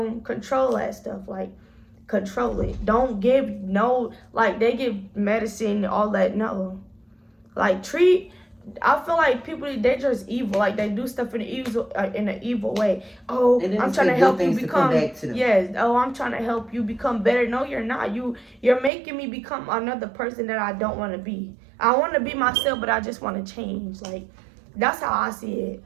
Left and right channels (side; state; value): left; drops out; at 18.9 s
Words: control that stuff. Like control it. Don't give like they give medicine, all that. No. Like I feel like people, they just evil. Like they do stuff in an evil way. Oh, I'm trying to help you become. Yes. Oh, I'm trying to help you become better. No, you're not. You're making me become another person that I don't want to be. I want to be myself, but I just want to change. Like that's how I see it.